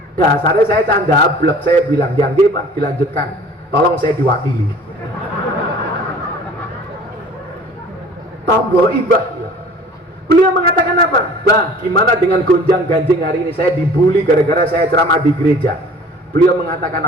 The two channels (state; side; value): normal; both; correlation 0.47